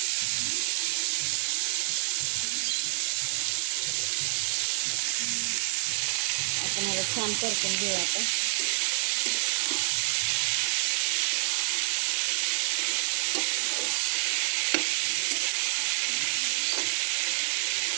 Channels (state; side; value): silent; left; 59 dB below the other